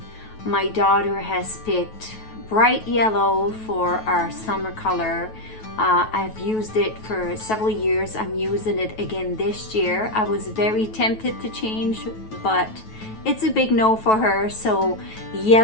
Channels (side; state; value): right; late; 9.2 ms